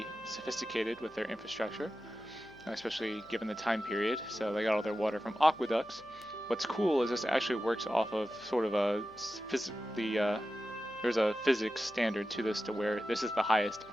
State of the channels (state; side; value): noise; left; hum, 26 dB below the sound